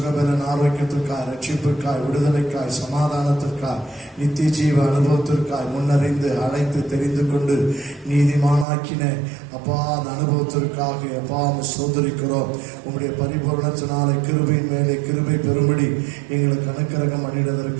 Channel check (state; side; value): drops out; left; at 8.7 s